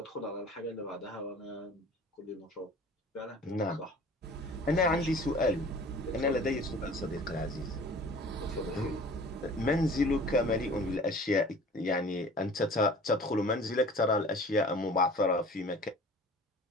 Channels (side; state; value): both; normal; correlation 0.45